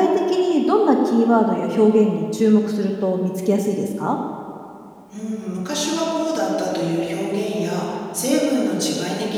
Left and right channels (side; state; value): both; identical; correlation 1.00